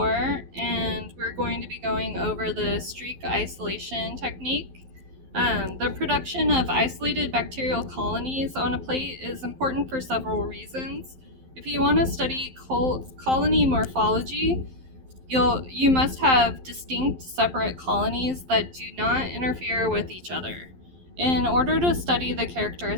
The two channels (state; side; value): late; left; 11 ms